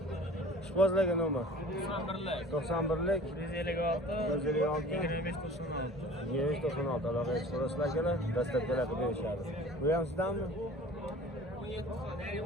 Ishqozlarga nomer 91lik 156 2596 aloqaga chiqasizlar akalar. Dastlabkilar qilib berishadi. Bu ham sizdanmi?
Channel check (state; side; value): normal; both; correlation 0.44